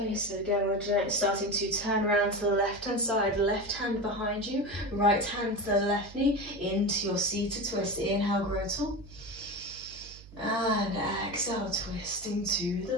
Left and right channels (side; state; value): right; noise; hum, 19 dB below the sound